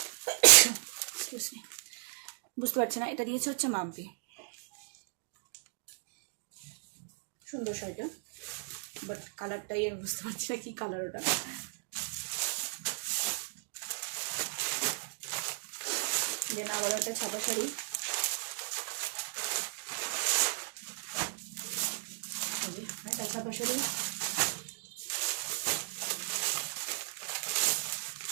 বুঝতে পারছি না। এটা দিয়েছে হচ্ছে মাম্পি। সুন্দর শাড়িটা, বাট কালারটাই আমি বুঝতে পারছি না কি কালার ওটা। দেন আবার একটা ছাপা শাড়ি, একটা ছাপা শাড়ি,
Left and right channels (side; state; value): left; silent; digital silence